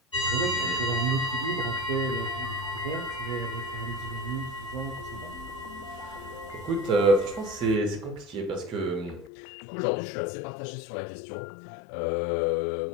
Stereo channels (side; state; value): right; drops out; at 9.3 s